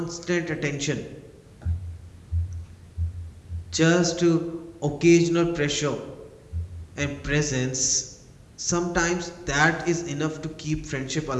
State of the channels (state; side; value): identical; both; correlation 1.00